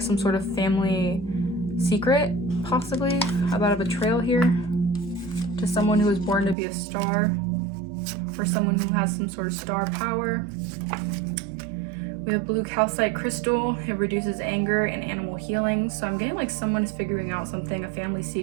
some sort of family secret, possibly, about a betrayal here to someone who was born to be a star, or someone who has some sort of star power. We have blue calcite crystal. It reduces anger and animal healing. So I'm getting like someone is figuring out something, a family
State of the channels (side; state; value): left; drops out; at 6.6 s